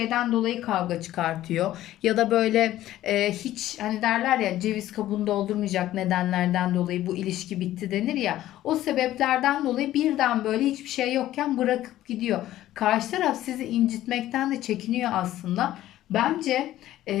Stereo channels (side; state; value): right; quieter; 14.0 dB